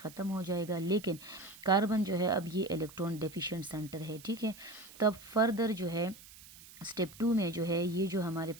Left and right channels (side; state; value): right; noise; hiss, 19 dB below the sound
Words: हो जाएगा, लेकिन कार्बन जो है अब ये इलेक्ट्रॉन डेफिशिएंट सेंटर है, ठीक है। तब फर्दर जो है स्टेप 2 में जो है ये जो हमारे